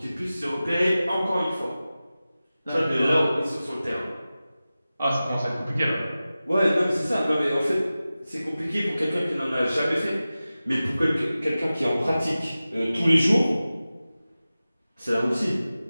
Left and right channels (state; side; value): inverted; both; correlation -0.96